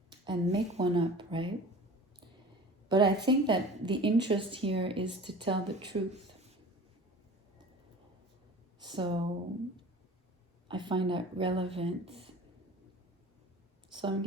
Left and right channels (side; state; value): both; normal; correlation 0.40